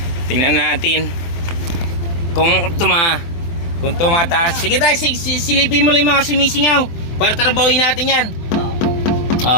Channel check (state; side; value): late; right; 24 ms